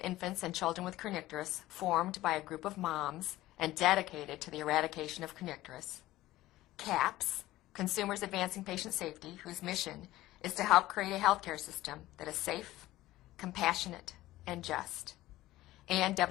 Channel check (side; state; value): right; quieter; 16.4 dB